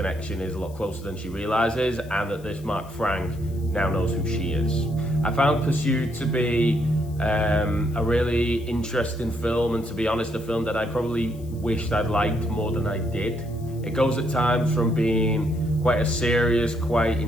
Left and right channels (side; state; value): left; noise; hiss, 25 dB below the sound